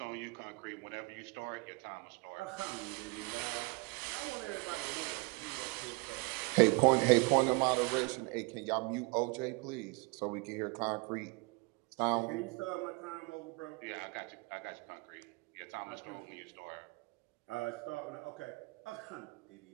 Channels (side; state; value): left; quieter; 28.3 dB